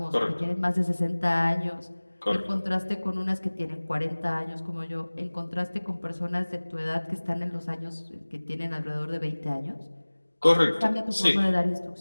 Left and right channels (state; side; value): inverted; both; correlation -1.00